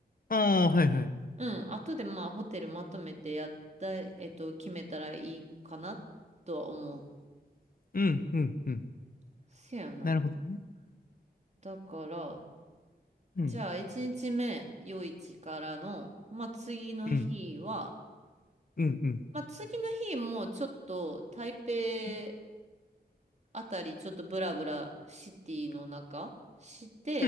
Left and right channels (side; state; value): both; normal; correlation 0.66